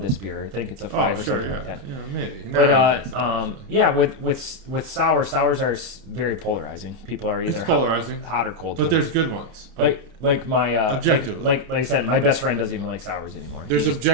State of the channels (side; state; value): left; late; 30 ms